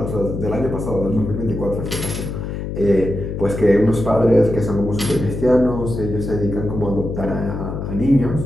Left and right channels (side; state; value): left; noise; hum, 5 dB below the sound